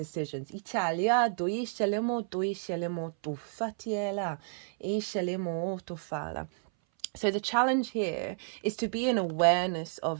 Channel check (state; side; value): silent; left; 57 dB below the other